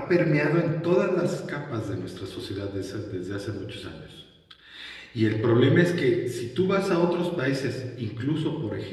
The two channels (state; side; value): identical; both; correlation 1.00